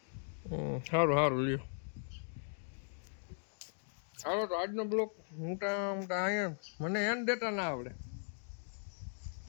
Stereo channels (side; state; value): right; silent; digital silence